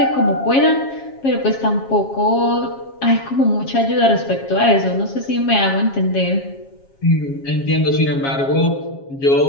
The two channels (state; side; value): late; right; 7.4 ms